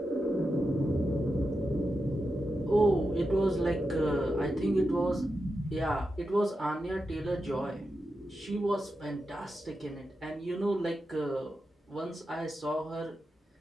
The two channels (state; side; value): normal; both; correlation 0.89